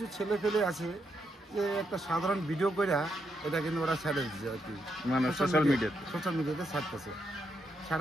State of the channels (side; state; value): both; normal; correlation 0.80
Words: ছেলে ফেলে আছে যে একটা সাধারণ ভিডিও করে এটা কিন্তু ওরা ছেড়ে দিচ্ছে আর কি, মানে সোশ্যাল মিডিয়াতে ছাড়তেছে।